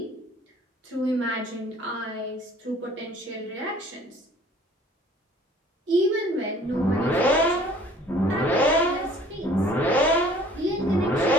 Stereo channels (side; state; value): both; normal; correlation 0.52